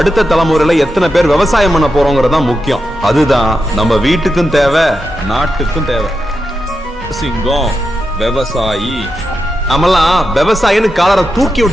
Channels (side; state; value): both; normal; correlation 0.87